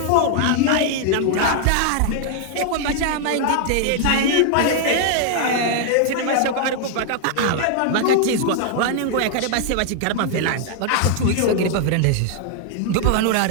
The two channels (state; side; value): different; both; correlation 0.00